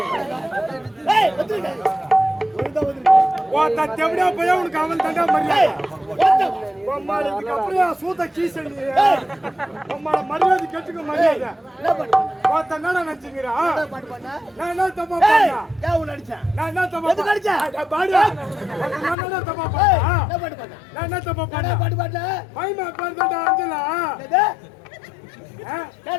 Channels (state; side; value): drops out; right; at 19.2 s